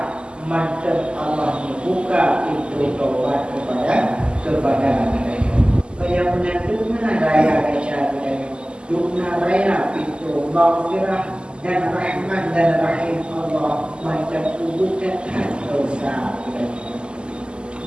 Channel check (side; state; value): left; late; 0.049 ms